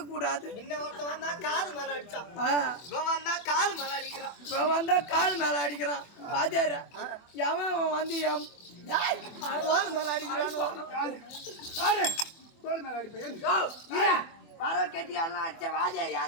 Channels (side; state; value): right; late; 24 ms